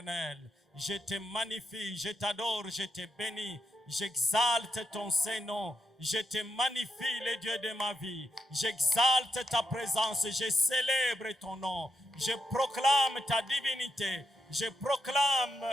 Je te magnifie, je t'adore, je te bénis. J'exalte ton Saint-Nom. Je te magnifie, le Dieu de ma vie. J'exalte ta présence. Je célèbre ton nom. Je proclame ta divinité. Je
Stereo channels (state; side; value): normal; both; correlation 0.83